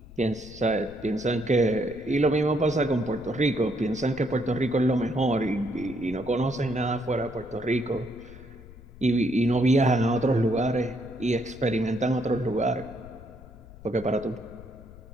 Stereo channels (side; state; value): left; noise; rumble, 18 dB below the sound